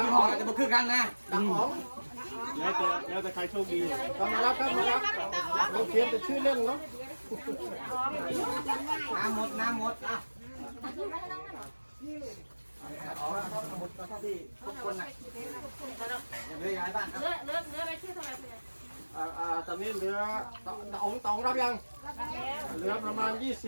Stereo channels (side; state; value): both; inverted; correlation -1.00